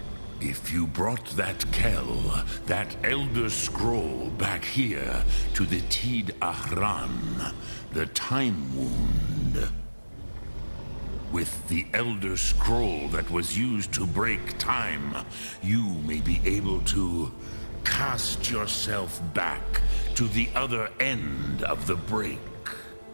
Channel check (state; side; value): inverted; both; correlation -1.00